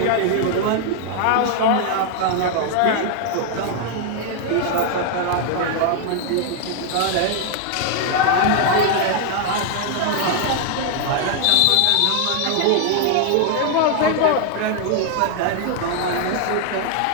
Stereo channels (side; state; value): both; different; correlation 0.00